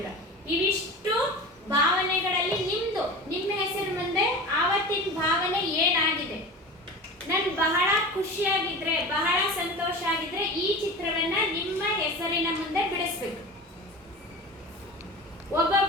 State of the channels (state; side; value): normal; both; correlation 0.32